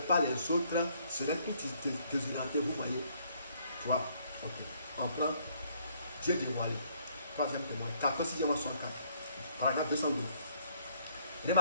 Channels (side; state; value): both; inverted; correlation -0.67